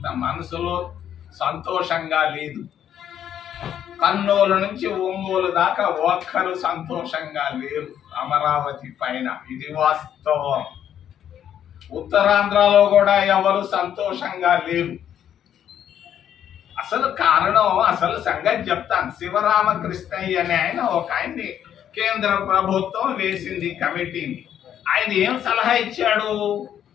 మనసులో సంతోషంగా లేదు. కర్నూలు నుంచి ఒంగోలు దాకా ఒక్కరు సంతోషంగా లేరు అమరావతి పైన. ఇది వాస్తవం. ఉత్తరాంధ్రలో కూడా ఎవరు సంతోషంగా లేరు. అసలు కారణం, అసలు సంగతి చెప్తాను. శివరామకృష్ణయ్య అనే ఆయన్ని కేంద్ర ప్రభుత్వం వేసింది కమిటీని. ఆయన ఏం సలహా ఇచ్చాడు?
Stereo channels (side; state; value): right; quieter; 9.9 dB